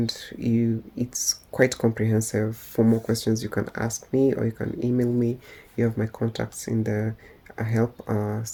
it's quite comprehensive. For more questions, you can ask me or you can email me. You have my contacts in the help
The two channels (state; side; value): identical; both; correlation 1.00